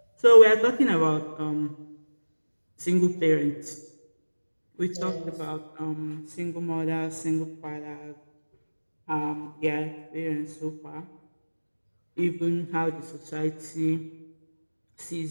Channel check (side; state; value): both; inverted; correlation -1.00